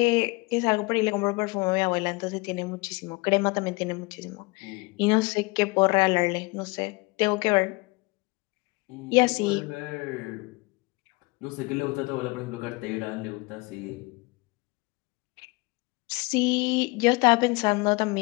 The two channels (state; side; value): quieter; right; 25.6 dB